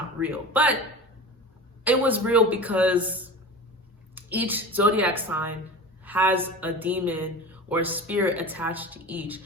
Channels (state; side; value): normal; both; correlation 0.32